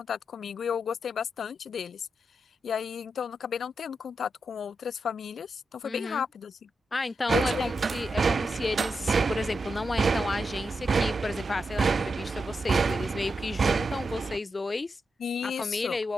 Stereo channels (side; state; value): both; normal; correlation 0.86